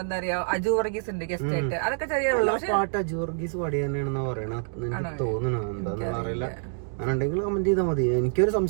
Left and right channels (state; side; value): silent; left; digital silence